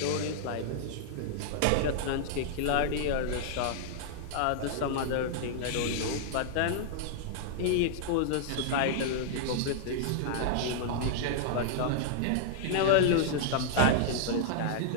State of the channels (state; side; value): different; both; correlation -0.01